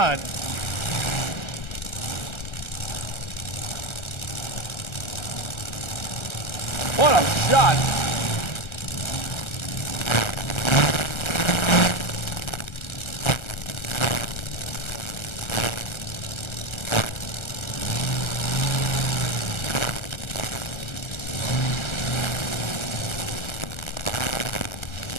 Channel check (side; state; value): right; late; 1.3 ms